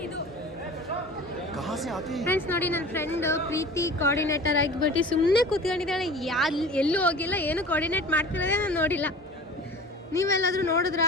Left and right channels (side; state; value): both; normal; correlation 0.39